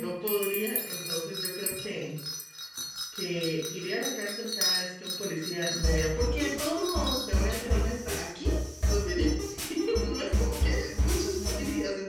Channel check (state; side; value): identical; both; correlation 1.00